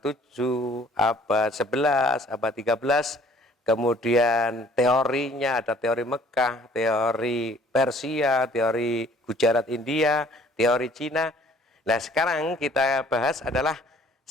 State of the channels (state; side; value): normal; both; correlation 0.56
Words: 7, abad 11, abad 13. Kemudian teorinya ada teori Mekah, teori Persia, teori Gujarat India, teori Cina. Nah sekarang kita bahas adalah